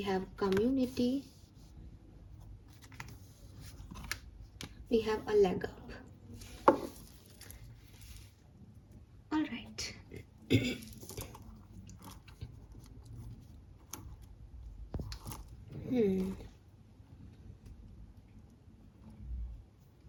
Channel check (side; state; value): both; identical; correlation 1.00